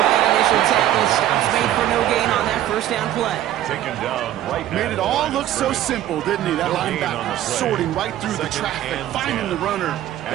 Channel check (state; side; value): quieter; left; 12.6 dB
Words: that initial tackle. Stops made for no gain on that 1st down play. Taken down right. Made it all look so simple, didn't he? That linebacker sorting right through the traffic, finding the runner.